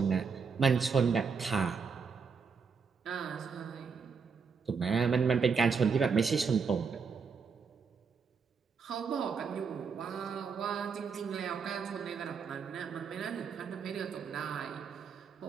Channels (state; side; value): quieter; left; 5.6 dB